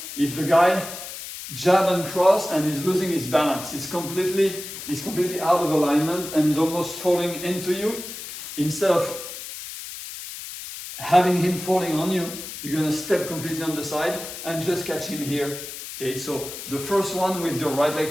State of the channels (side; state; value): left; noise; hiss, 10 dB below the sound